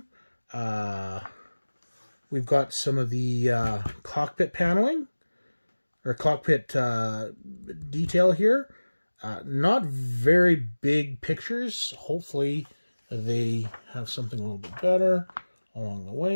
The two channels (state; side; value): inverted; both; correlation -1.00